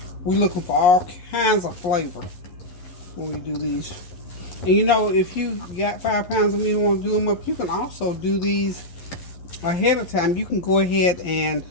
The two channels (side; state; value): right; late; 11 ms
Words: we're looking for all kinds of flavor when we do these. And if you got 5 pounds of meat and want to do them up, you can also do these ahead of time. You can go ahead and